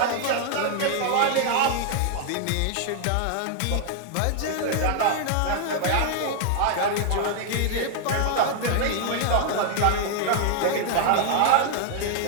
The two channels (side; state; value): both; different; correlation 0.00